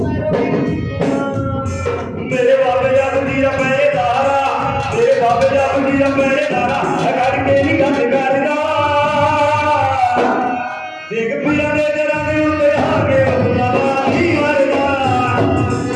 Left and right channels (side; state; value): both; identical; correlation 1.00